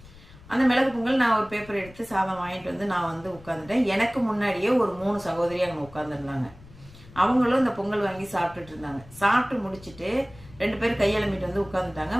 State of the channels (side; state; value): left; noise; rumble, 22 dB below the sound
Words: அந்த மிளகு பொங்கல் நான் ஒரு பேப்பர் எடுத்து சாதம் வாங்கிட்டு வந்து நான் வந்து உட்காந்துட்டேன். எனக்கு முன்னாடியே ஒரு 3 சகோதரி அங்கே உட்காந்துருந்தாங்க. அவங்களும் இந்த பொங்கல் வாங்கி சாப்பிட்டுட்டு இருந்தாங்க. சாப்பிட்டு முடிச்சுட்டு 2 பேர் கையெழுமிட்டு வந்து உட்காந்துட்டாங்க.